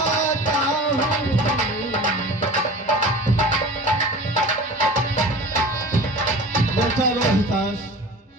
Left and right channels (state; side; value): normal; both; correlation 0.38